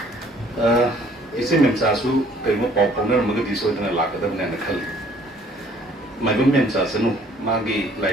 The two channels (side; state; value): both; normal; correlation 0.59